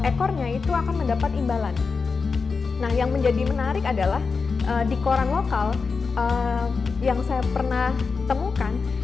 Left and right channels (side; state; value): right; quieter; 4.8 dB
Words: ekornya itu akan mendapat imbalan. Nah, yang menjadi menarik adalah di koran lokal yang saya pernah temukan,